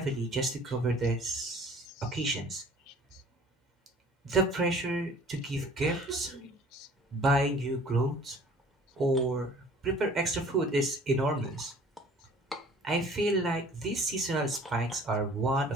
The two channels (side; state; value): both; normal; correlation 0.50